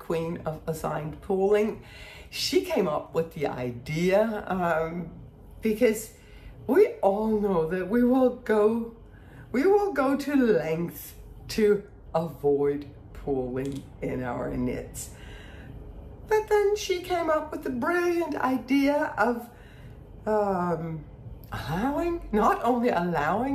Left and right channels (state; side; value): identical; both; correlation 1.00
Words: of assigned pooling. She came up with the idea because we all know that we will go to lengths to avoid pooling in our knits. But then she came up with the brilliant idea of not only